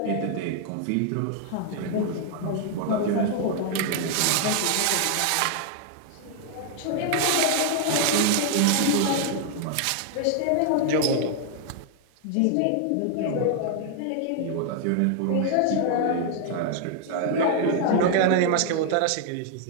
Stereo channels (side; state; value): both; different; correlation 0.00